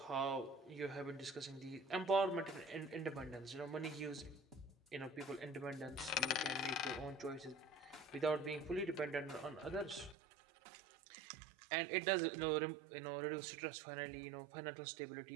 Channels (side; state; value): left; drops out; at 10.2 s